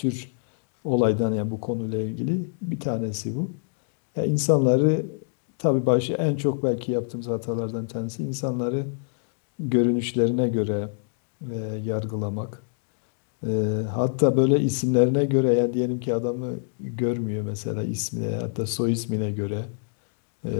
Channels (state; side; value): silent; right; digital silence